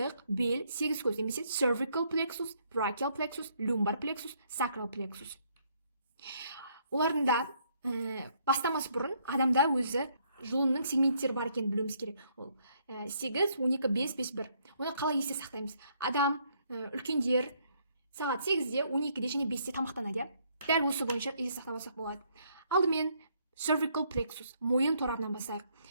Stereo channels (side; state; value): both; inverted; correlation -0.69